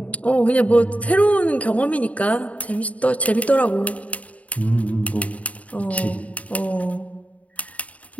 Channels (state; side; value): late; right; 0.068 ms